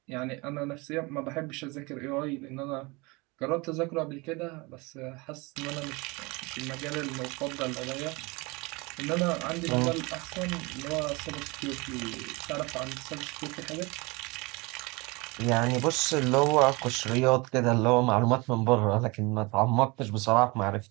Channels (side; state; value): left; quieter; 26.0 dB